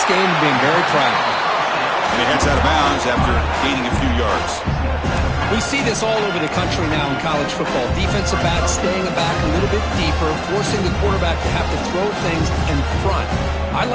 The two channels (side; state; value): both; identical; correlation 1.00